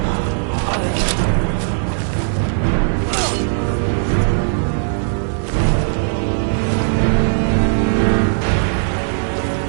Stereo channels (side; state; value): left; silent; digital silence